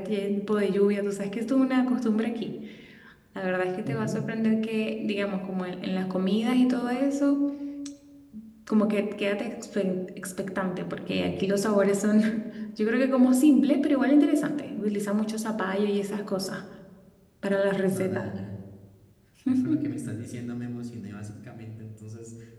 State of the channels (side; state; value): both; identical; correlation 1.00